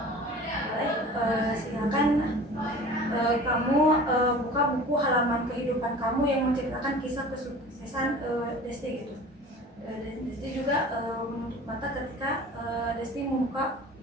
silakan kamu buka buku halaman kehidupan kamu yang menceritakan kisah kesuksesan Desti gitu. Desti juga menutup mata ketika Desti membuka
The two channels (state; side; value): normal; both; correlation 0.41